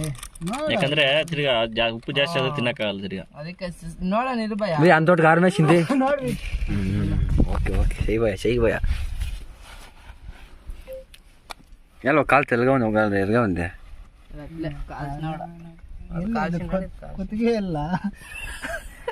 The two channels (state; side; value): identical; both; correlation 1.00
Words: ಯಾಕಂದ್ರೆ ತಿರ್ಗಾ ಉಪ್ಪು ಜಾಸ್ತಿ ಆದ್ರೆ ತಿನ್ನಕ್ಕಾಗಲ್ಲ ತಿರ್ಗಾ. ಅದಕ್ಕೆ ನೋಡೋಣ ಇರ್ಬಯ್ಯ. ಭಯ ಅಂತೋಟ್ ಕಾರ್ ಮೇಲೆ ಚಿಂತೆ. ನೋಡ್ರಿ. ಓಕೆ ಓಕೆ ಸही ಭಯ ಎಲ್ಲ ಕಾಲು ತೆಲಗ ಒಂದು ಎಲ್ಗ ಒಂದೆ ಕುತ್ತಿಗೆ ಇಲ್ಲ